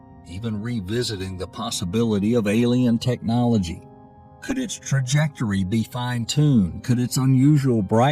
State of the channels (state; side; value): identical; both; correlation 1.00